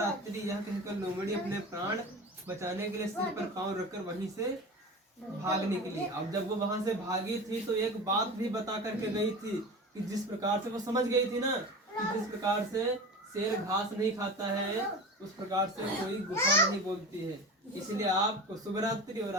यह कहकर लोमड़ी अपने प्राण बचाने के लिए सिर पर पांव रखकर वहीं से भाग निकली। अब जब वो वहां से भागी थी तो एक बात भी बता करके गई थी कि जिस प्रकार से वो समझ गई थी ना कि जिस प्रकार से शेर घास नहीं खाता है उस प्रकार से कोई गुफा नहीं बोलती है, इसलिए आपको शुभ रात्रि और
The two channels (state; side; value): normal; both; correlation 0.31